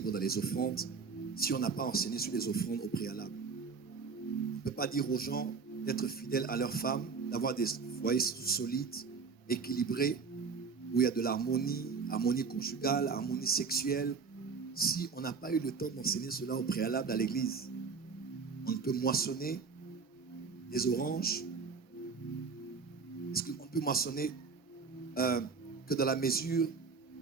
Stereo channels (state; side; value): quieter; left; 5.1 dB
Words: dans les offrandes, si on n'a pas enseigné sur les offrandes au préalable. On ne peut pas dire aux gens d'être fidèles à leurs femmes, d'avoir des foyers solides, équilibrés, où il y a de l'harmonie, harmonie conjugale, harmonie sexuelle, si on n'a pas eu le temps d'enseigner cela au préalable à l'église. On ne peut moissonner des oranges. Est-ce qu'on peut moissonner que dans la mesure